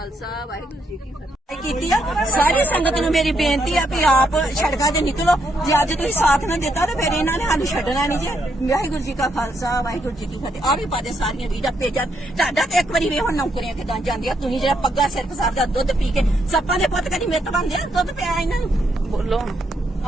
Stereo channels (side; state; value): both; normal; correlation 0.77